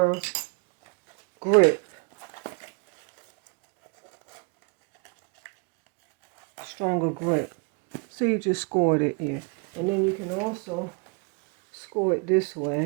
grip. So you just scored it here. And then you can also score it this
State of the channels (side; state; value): left; quieter; 31.0 dB